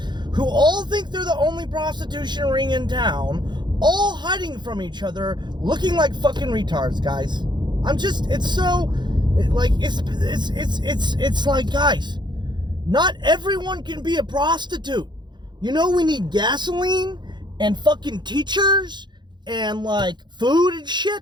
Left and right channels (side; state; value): left; late; 0.21 ms